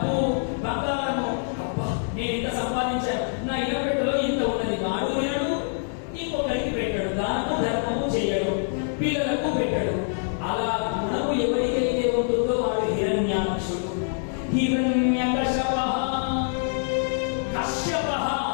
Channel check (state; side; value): silent; right; digital silence